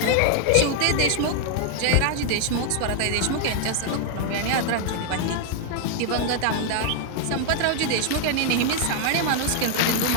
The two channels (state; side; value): different; both; correlation 0.00